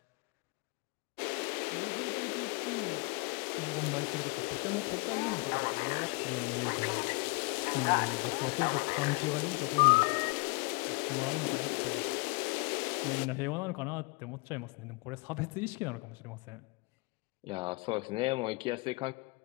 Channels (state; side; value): quieter; right; 29.1 dB